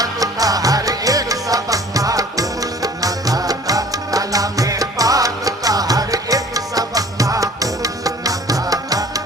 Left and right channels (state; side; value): normal; both; correlation 0.49